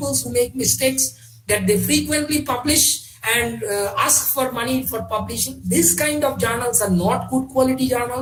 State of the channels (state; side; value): identical; both; correlation 1.00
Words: who make mistakes that they frequently publish and ask for money for publishing. This kind of journals are not good quality